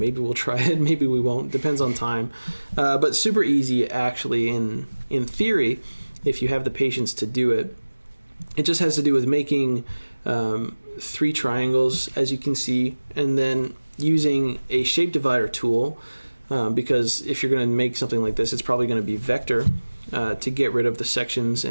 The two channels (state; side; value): inverted; both; correlation -1.00